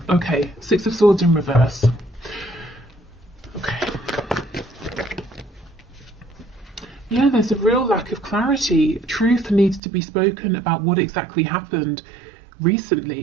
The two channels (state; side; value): drops out; left; at 9.8 s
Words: okay. Six of Swords in reverse. Okay. Yeah, there's a real lack of clarity. Truth needs to be spoken about what exactly happened